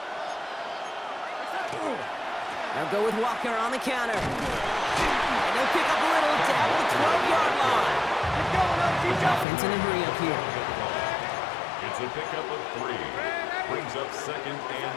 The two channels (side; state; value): right; drops out; at 9.5 s